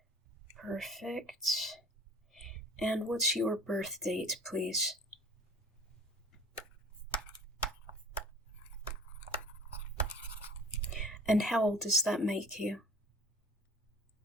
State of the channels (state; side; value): normal; both; correlation 0.44